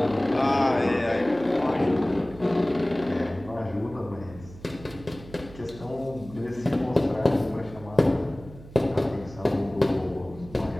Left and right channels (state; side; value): noise; right; hum, 18 dB below the sound